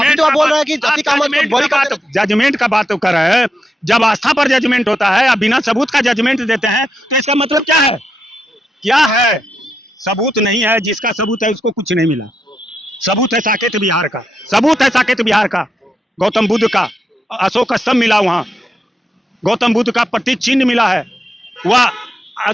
तो बोल रहे हैं कि अतीक अहमद जजमेंट का बात कर रहे हैं, जब आस्था पर जजमेंट होता है या बिना सबूत का जजमेंट देते हैं तो इसका मतलब क्या है? क्या है? सबूत नहीं है। जिसका सबूत है उसको कुछ नहीं मिला। सबूत है साकेत बिहार का, सबूत है साकेत बिहार का, गौतम बुद्ध का अशोक स्तंभ मिला, वहां गौतम बुद्ध का प्रतीक चिन्ह मिला है, वह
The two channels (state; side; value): normal; both; correlation 0.84